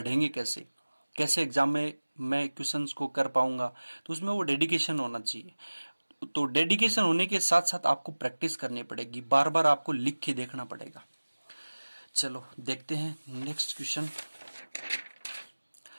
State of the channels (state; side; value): inverted; both; correlation -1.00